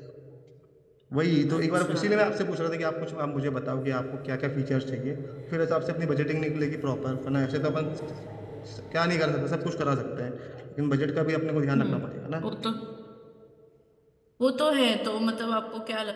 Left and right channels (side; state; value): both; identical; correlation 1.00